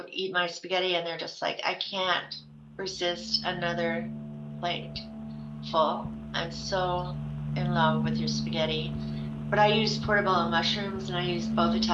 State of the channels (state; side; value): identical; both; correlation 1.00